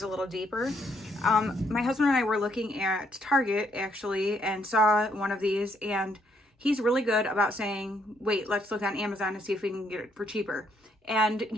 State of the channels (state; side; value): normal; both; correlation 0.72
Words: a little deeper. My husband and I were looking at Target actually and saw one of these, and he's really good about saying, wait, let's look on Amazon and see if we can get it for cheaper. And